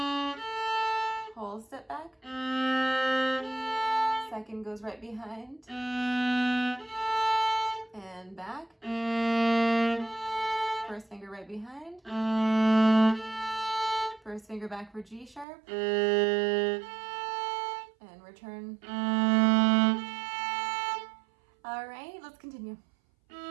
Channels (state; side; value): drops out; left; at 15.5 s